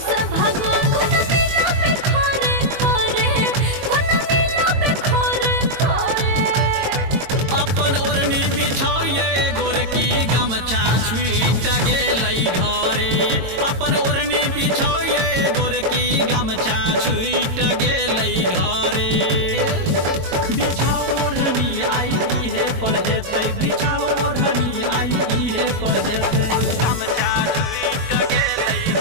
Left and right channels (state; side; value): late; left; 22 ms